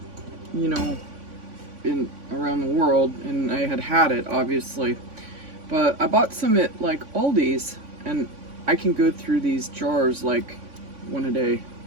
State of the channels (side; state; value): left; late; 3.5 ms